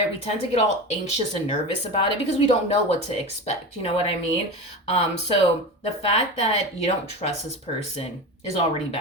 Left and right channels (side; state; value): both; normal; correlation 0.26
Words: we tend to get all anxious and nervous about it because we don't know what to expect. You know what I mean? So the fact that you don't trust this person is already